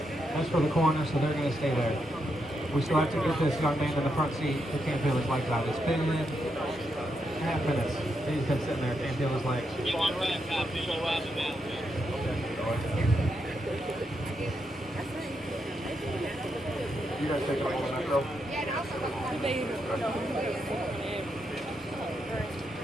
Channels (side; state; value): both; normal; correlation 0.82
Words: for the coroner, so they're going to stay there. We still have to get this young man in the front seat who can't feel his legs out. It's been half minutes. He's been sitting there, can't feel his legs. You guys take a moment, Metro.